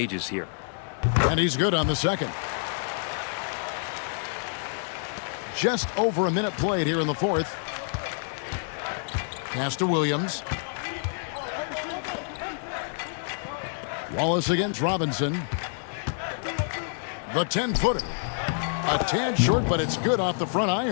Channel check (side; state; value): right; silent; 57 dB below the other